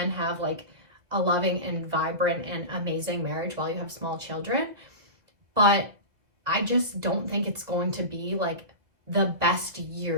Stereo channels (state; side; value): late; left; 2.0 ms